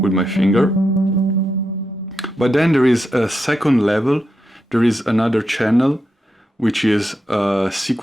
my finger. But then there is a second level. There is another channel which is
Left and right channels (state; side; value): normal; both; correlation 0.85